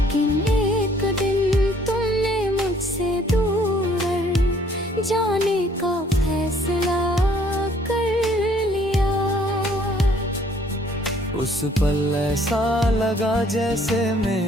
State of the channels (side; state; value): both; normal; correlation 0.61